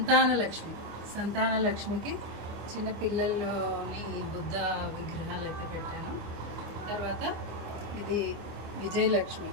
సంతానలక్ష్మికి చిన్న పిల్లల్లోని బుద్ధ విగ్రహాలు అయితే పెట్టాను. తర్వాత ఇది విజయలక్ష్మి,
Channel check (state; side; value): late; left; 24 ms